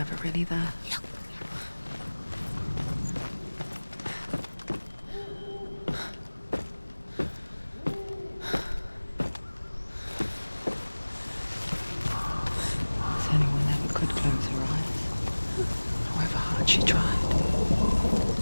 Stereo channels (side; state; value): both; inverted; correlation -1.00